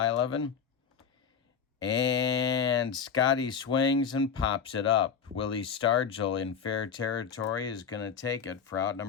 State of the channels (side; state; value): right; quieter; 6.8 dB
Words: And Scotty swings and pops it up. Willie Stargell in fair territory is going to take it for out